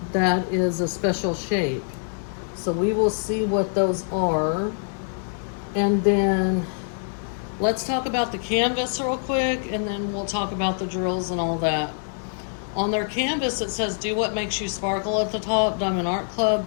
that is a special shape. So we will see what those are. And then let's talk about the canvas real quick, and then we'll talk about the drills and all that. On their canvas, it says, "Do what makes you sparkle" at the top, Diamond Art Club.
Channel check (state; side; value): silent; right; digital silence